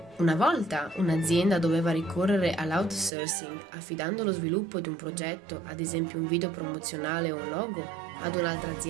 Una volta un'azienda doveva ricorrere all'outsourcing affidando lo sviluppo di un progetto, ad esempio un video promozionale o un logo, ad un'altra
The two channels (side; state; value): left; drops out; at 3.1 s